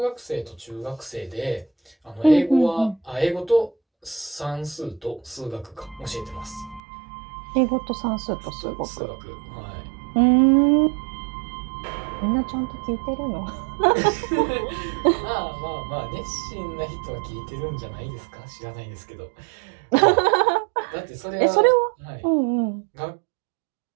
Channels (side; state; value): left; drops out; at 6.8 s